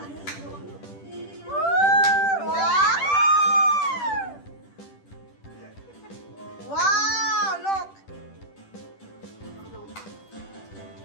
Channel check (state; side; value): late; right; 10 ms